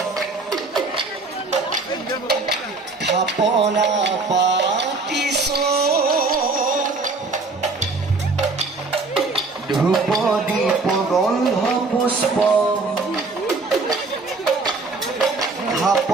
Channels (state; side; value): quieter; left; 3.7 dB